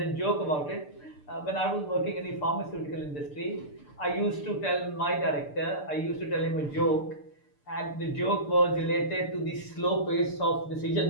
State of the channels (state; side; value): late; right; 6.8 ms